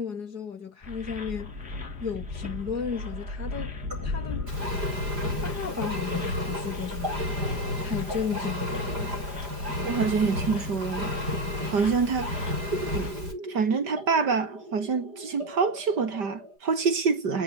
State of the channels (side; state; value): left; late; 4.9 ms